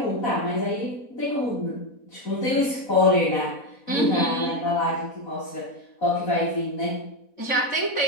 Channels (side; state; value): right; late; 4.1 ms